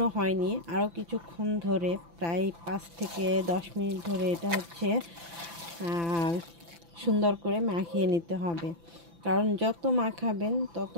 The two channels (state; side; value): late; left; 5.9 ms